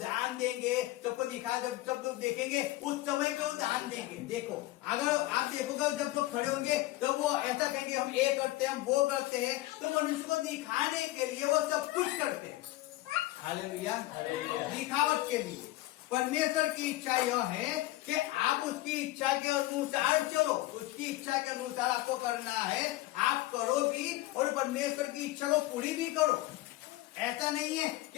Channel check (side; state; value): right; quieter; 17.6 dB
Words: देंगे, सबको दिखा, जब सब लोग देखेंगे उस समय पे वो दान देंगे। देखो अगर आप देखोगे जब लोग खड़े होंगे तो वो ऐसा कहेंगे हम ये करते हैं, हम वो करते हैं, तो मनुष्य को दिखाने के लिए वो सब कुछ करते हैं। हालेलुया, दिखावट के लिए। परमेश्वर की इच्छा यह है कि आप उसकी इच्छा के अनुसार चलो, उसकी इच्छा के अनुसार आपको करना है, आप करो भी और परमेश्वर की इच्छा को पूरी भी करो। ऐसा नहीं है